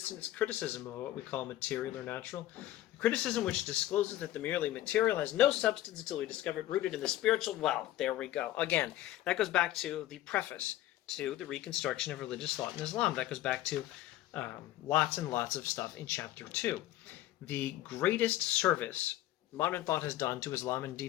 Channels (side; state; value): right; quieter; 14.3 dB